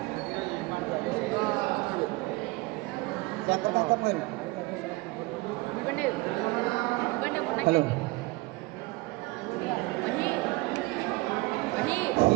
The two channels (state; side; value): quieter; left; 23.3 dB